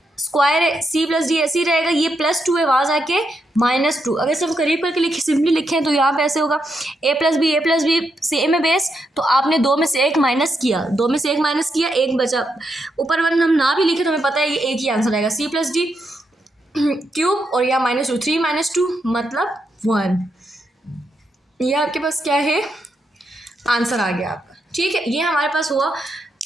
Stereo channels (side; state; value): both; normal; correlation 0.82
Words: स्क्वायर है, c + d ऐसे ही रहेगा, ये +2 है, वहाँ जाके -2। अगर सिर्फ करीब करके सिंपली लिखें तो यहाँ पे ऐसे होगा a + b सेम है बेस, तो आपने 2 में से 1 माइनस किया, 2 में से 1 माइनस किया, 1 बचा। ऊपर वन हम ना भी लिखे तो हमें पता है ये एक ही आंसर आएगा, c + d क्यूब और यहाँ -2, 3 - 2 मतलब 1। ये आपके पास क्या है, आंसर आ गया आपका। ठीक है, ये हमारे पास हुआ